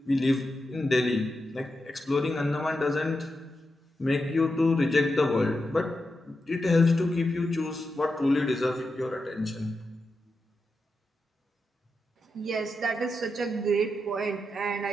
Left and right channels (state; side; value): normal; both; correlation 0.88